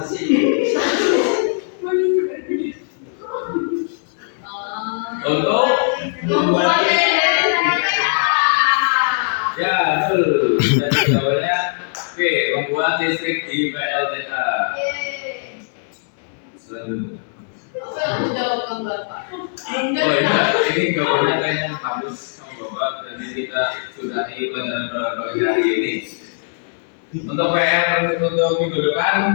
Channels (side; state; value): right; silent; 66 dB below the other